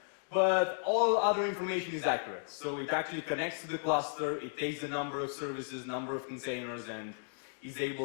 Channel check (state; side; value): silent; right; digital silence